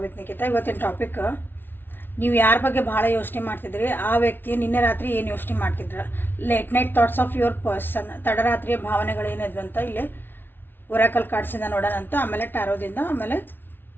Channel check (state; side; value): late; right; 0.10 ms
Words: with Nikhita. ಇವತ್ತಿನ topic, ನೀವು ಯಾರ ಬಗ್ಗೆ ಭಾಳ ಯೋಚನೆ ಮಾಡ್ತಿದ್ರಿ, ಆ ವ್ಯಕ್ತಿ ನಿನ್ನೆ ರಾತ್ರಿ ಏನು ಯೋಚನೆ ಮಾಡ್ತಿದ್ರ, late night thoughts of your person, ತಡರಾತ್ರಿಯ ಭಾವನೆಗಳೇನಿದ್ವು ಅಂತ ಇಲ್ಲಿ ಒರಾಕಲ್ ಕಾರ್ಡ್ಸಿಂದ ನೋಡೋಣಂತ, ಆಮೇಲೆ ಟ್ಯಾರೋದಿಂದ, ಆಮೇಲೆ